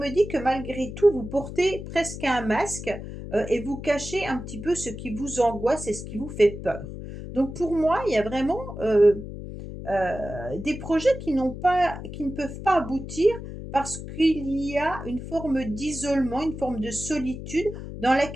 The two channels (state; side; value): noise; left; hum, 10 dB below the sound